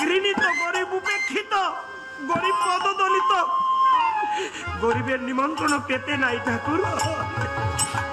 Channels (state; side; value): identical; both; correlation 1.00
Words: ঘৃণিত, গরিব উপেক্ষিত, গরিব পদদলিত, গরিবের নিমন্ত্রণ পেতে নাই ঠাকুর।